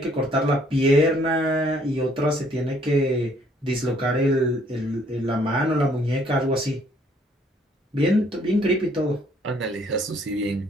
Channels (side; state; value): both; normal; correlation 0.63